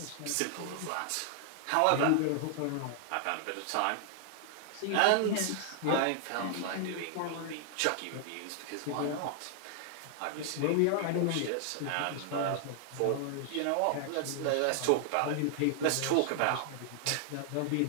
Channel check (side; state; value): both; different; correlation 0.00